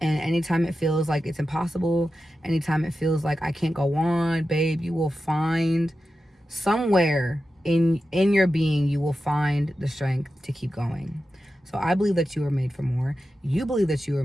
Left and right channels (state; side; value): normal; both; correlation 0.92